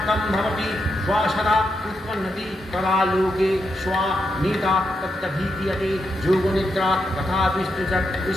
भवति श्वासदा उत्पन्नति तदा लोके श्वा नीता तत्तभीक्रियते योगनिद्रा तथा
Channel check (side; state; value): both; normal; correlation 0.83